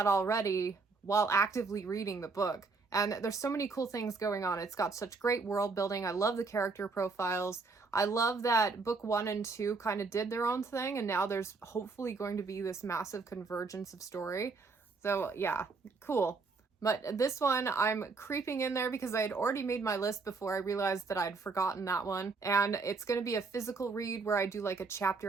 already while actively reading the book, and there's so many cool things going on. It's got such great world building. I love the character profiles. I love that book 1 and 2 kind of did their own thing, and now there's hopefully going to be this massive convergence of story. So yeah, cool. But this one, I'm creeping in there because I had already made my list before I realized that I'd forgotten that one. And it's going to be a physical read where I do like a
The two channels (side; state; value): left; quieter; 4.3 dB